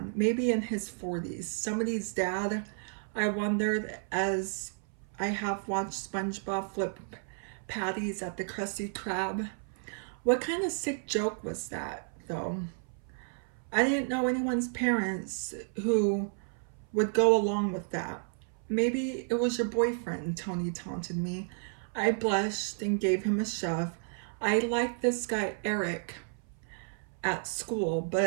maybe in his 40s, somebody's dad. I wondered as I have watched SpongeBob flip patties at the Krusty Krab. What kind of sick joke was that, though? I didn't know anyone's parents who would go along with that. Maybe it was your boyfriend, Tony taunted me. I blushed and gave him a shove. I liked this guy, Eric, at school,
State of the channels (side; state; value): left; silent; 56 dB below the other